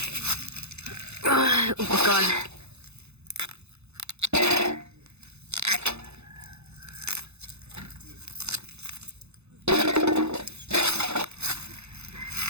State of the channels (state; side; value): late; left; 0.81 ms